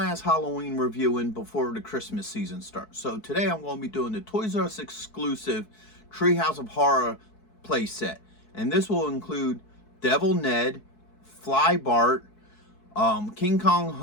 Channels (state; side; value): late; right; 4.6 ms